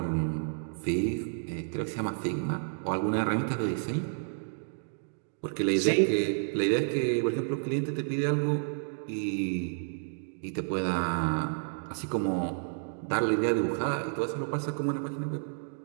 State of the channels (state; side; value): silent; left; digital silence